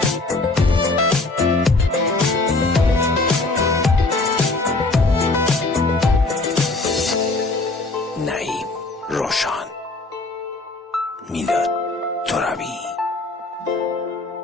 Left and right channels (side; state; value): right; quieter; 3.3 dB